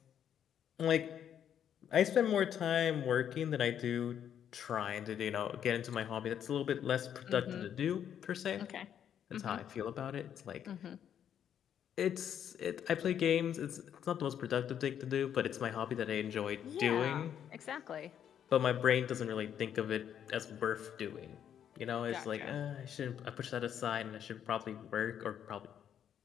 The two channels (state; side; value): quieter; right; 9.3 dB